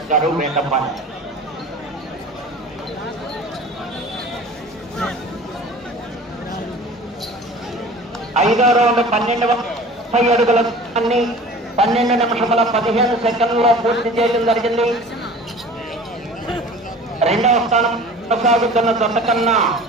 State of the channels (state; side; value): normal; both; correlation 0.42